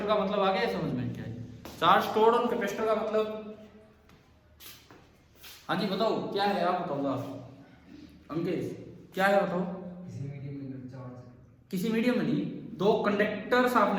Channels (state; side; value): identical; both; correlation 1.00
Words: का मतलब आ गया समझ में? क्या है चार्ज स्टोर्ड ऑन कैपेसिटर का मतलब? हाँ जी बताओ क्या है, आप बताओ। अंकेश क्या है बताओ? किसी मीडियम के अंदर चार्ज किसी मीडियम में नहीं, दो कंडक्टर्स